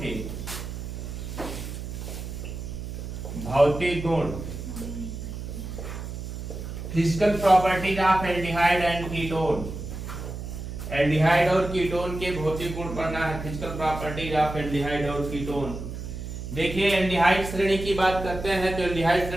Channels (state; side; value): noise; right; hum, 8 dB below the sound